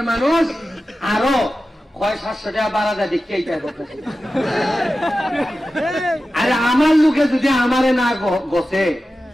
মানুষ, আরো কয় 700 টাকা বাড়া যায় দেখতে এইটাই করতেছে। আরে আমার লোকে যদি আমারে না গছে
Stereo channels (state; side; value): normal; both; correlation 0.93